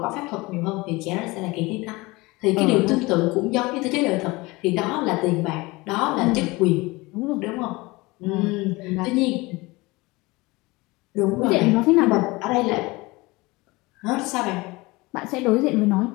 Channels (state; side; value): quieter; right; 22.7 dB